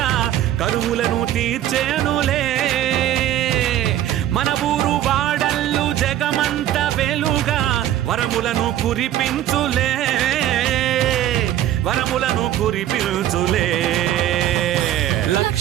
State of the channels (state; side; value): quieter; left; 12.3 dB